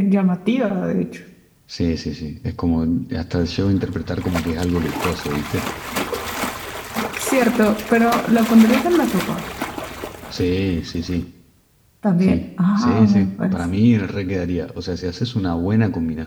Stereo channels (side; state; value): both; identical; correlation 1.00